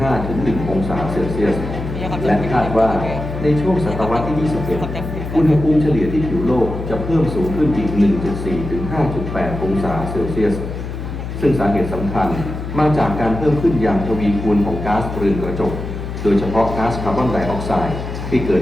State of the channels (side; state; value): left; noise; hum, 7 dB below the sound